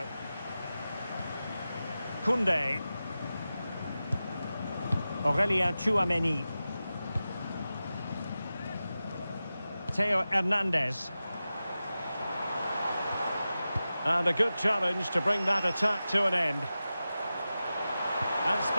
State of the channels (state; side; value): inverted; both; correlation -0.94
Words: Koundé. Aurélien Tchouameni. Theo Hernandez. And a good challenge to bring that attack to an end. And